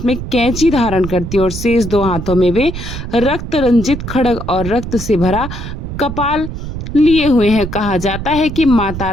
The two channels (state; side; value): noise; right; rumble, 7 dB below the sound